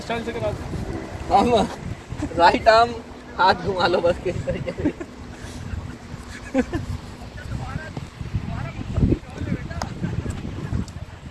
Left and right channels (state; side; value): identical; both; correlation 1.00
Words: स्टाइल से कराते? हम राइट आर्म हाथ घुमा लो बस, किस तरीके से।